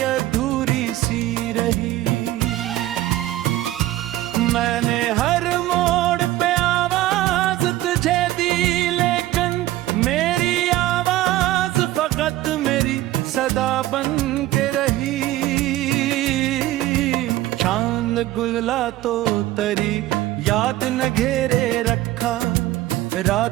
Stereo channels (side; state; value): left; quieter; 15.5 dB